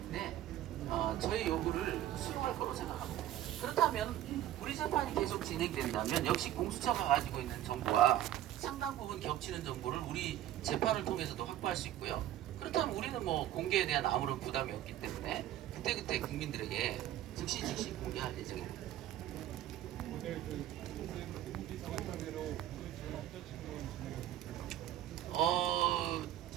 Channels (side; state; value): left; quieter; 12.8 dB